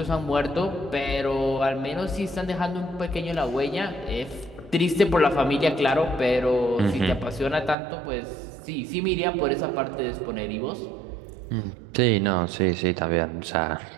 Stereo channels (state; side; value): drops out; left; at 7.8 s